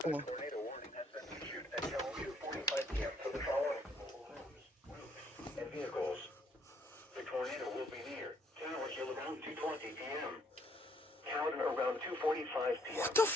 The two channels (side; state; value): both; normal; correlation 0.66